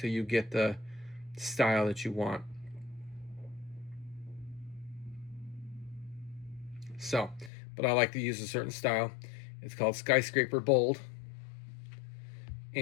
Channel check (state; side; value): drops out; right; at 7.5 s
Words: you get the style that you want. So, but I like to use a certain style. It's called Skyscraper Bold,